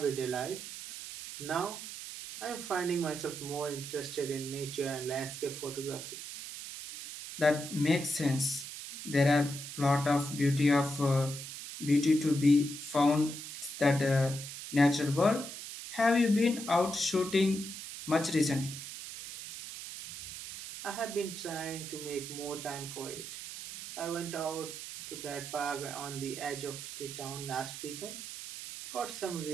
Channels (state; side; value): noise; right; hiss, 9 dB below the sound